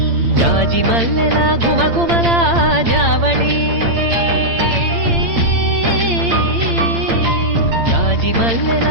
జాజి మల్లెల ఘుమఘుమల జావళి జాజి మల్లెల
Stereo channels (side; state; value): left; late; 8.8 ms